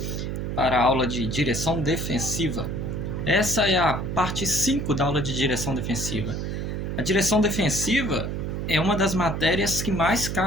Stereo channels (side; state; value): right; noise; hum, 3 dB below the sound